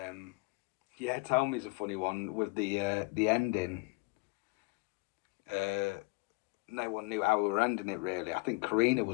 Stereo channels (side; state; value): right; quieter; 27.8 dB